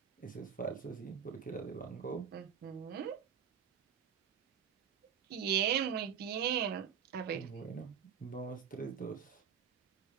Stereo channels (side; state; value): left; quieter; 7.8 dB